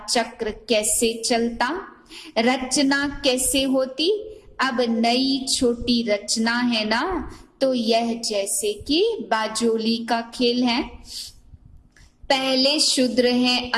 चक्र कैसे चलता, रचना कैसे होती। अब नई छोटी रचना है ना, तो यह जैसे कि बाजोली का खेल है। पहले शूद्र हैं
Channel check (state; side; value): identical; both; correlation 1.00